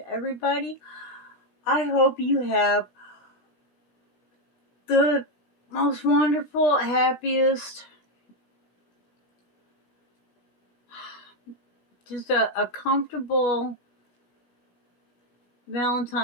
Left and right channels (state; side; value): late; right; 16 ms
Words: everybody. I hope you have the most wonderful, happiest, just a comfortable